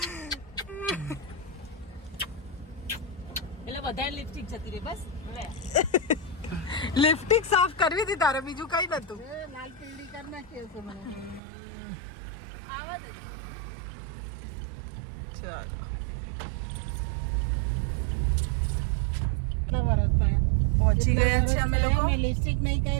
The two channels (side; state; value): left; drops out; at 11.4 s